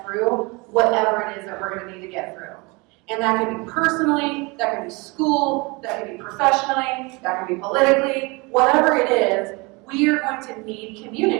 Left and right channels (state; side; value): quieter; left; 27.1 dB